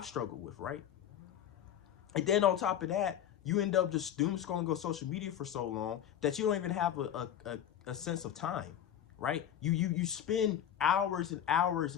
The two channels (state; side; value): quieter; right; 10.2 dB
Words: struggled with, right? And then on top of that, you end up just doom scrolling on social media for so long that you don't even have a sense of time, right? You spend hours and hours